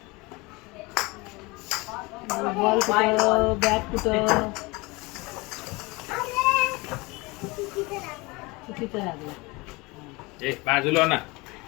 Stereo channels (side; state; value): right; quieter; 24.6 dB